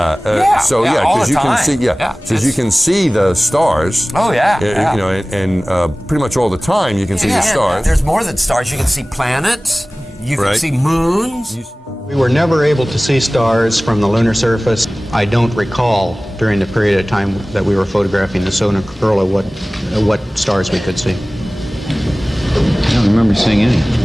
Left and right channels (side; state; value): both; normal; correlation 0.98